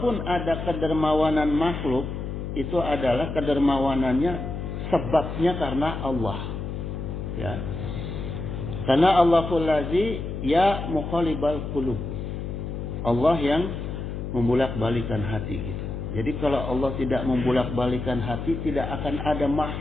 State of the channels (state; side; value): noise; left; hum, 5 dB below the sound